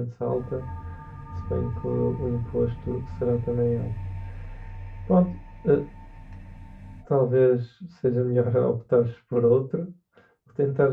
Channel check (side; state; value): both; identical; correlation 1.00